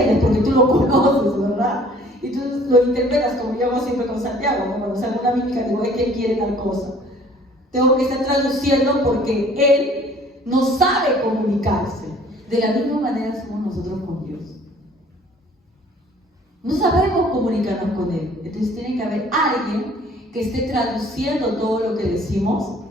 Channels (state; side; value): normal; both; correlation 0.54